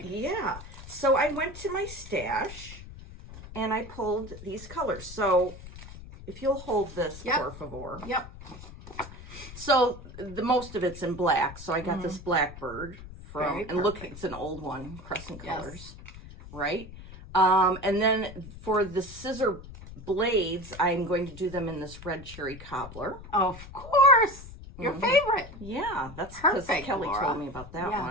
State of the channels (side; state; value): left; noise; rumble, 15 dB below the sound